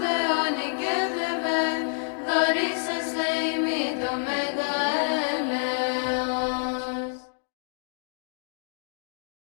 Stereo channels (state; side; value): silent; right; digital silence